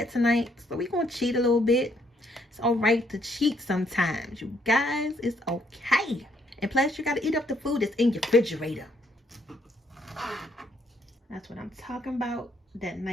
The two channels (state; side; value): normal; both; correlation 0.70